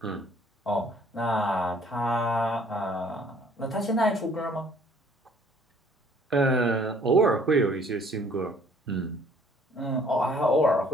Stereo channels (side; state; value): both; normal; correlation 0.58